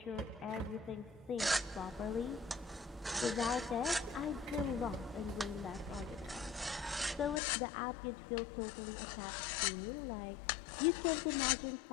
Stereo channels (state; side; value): drops out; right; at 7.4 s